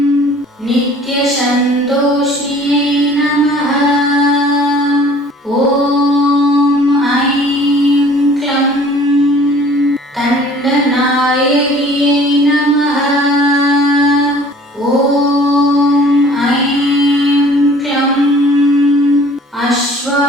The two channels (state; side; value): normal; both; correlation 0.51